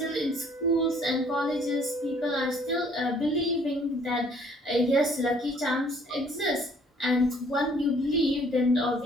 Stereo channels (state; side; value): normal; both; correlation 0.59